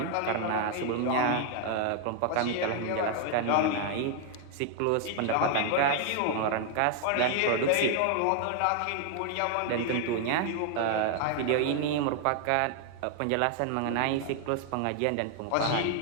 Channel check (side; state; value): both; different; correlation 0.00